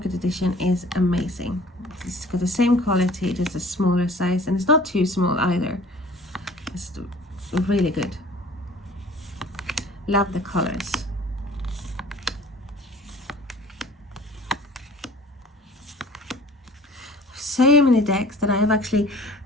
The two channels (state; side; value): normal; both; correlation 0.48